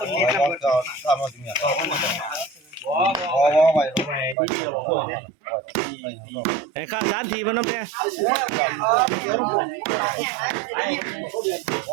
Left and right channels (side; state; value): left; drops out; at 4.4 s